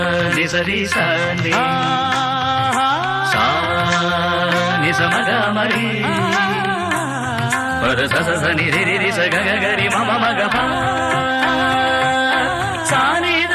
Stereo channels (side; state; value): both; identical; correlation 1.00